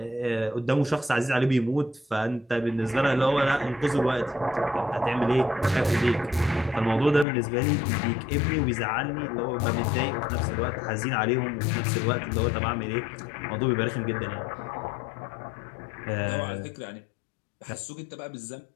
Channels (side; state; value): right; drops out; at 7.2 s